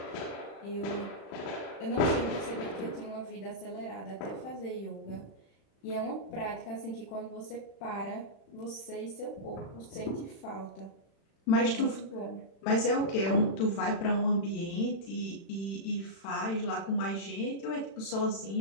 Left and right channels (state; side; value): late; right; 36 ms